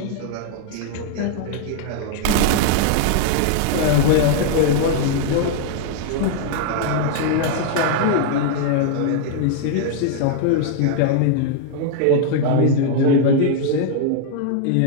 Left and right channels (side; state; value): both; different; correlation 0.00